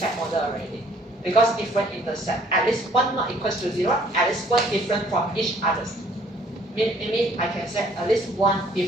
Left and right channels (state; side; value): normal; both; correlation 0.60